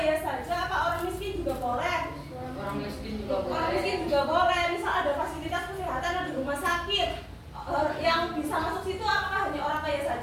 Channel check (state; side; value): identical; both; correlation 1.00